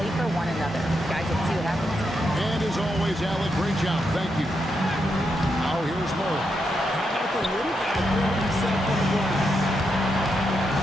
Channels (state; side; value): normal; both; correlation 0.83